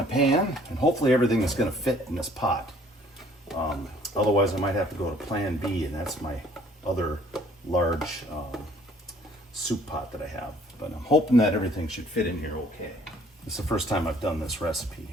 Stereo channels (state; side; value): normal; both; correlation 0.58